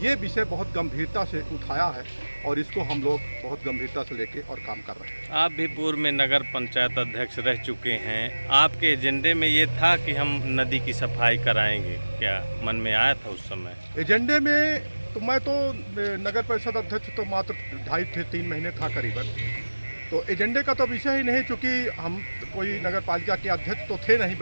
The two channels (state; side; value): inverted; both; correlation -1.00